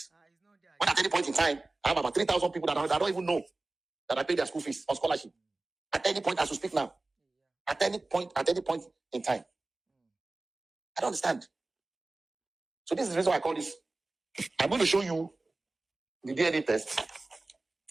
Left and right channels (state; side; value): quieter; left; 3.1 dB